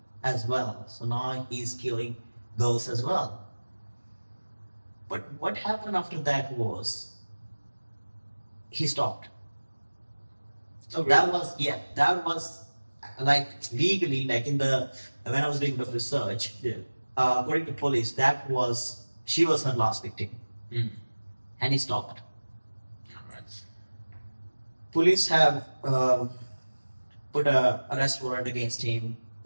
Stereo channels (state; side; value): inverted; both; correlation -1.00